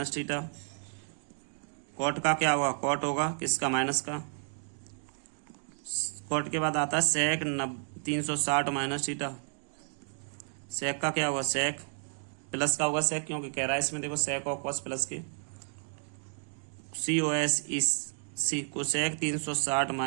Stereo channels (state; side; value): silent; left; 56 dB below the other